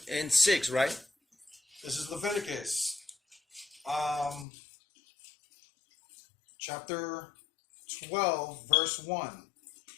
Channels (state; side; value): drops out; right; at 4.5 s